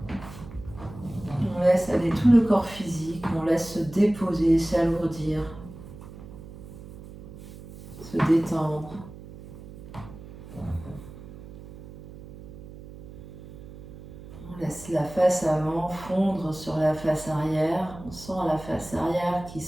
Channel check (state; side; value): noise; right; hum, 15 dB below the sound